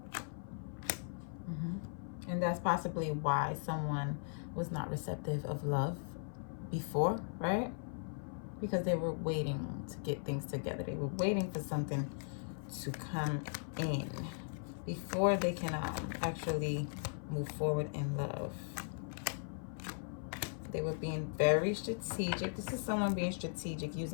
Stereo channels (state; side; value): silent; right; 52 dB below the other